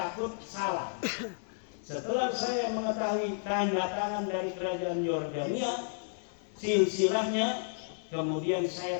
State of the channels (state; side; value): silent; right; digital silence